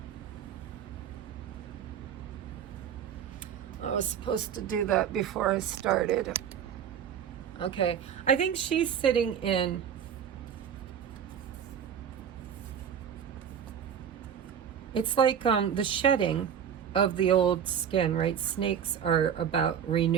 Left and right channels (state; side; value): quieter; left; 8.4 dB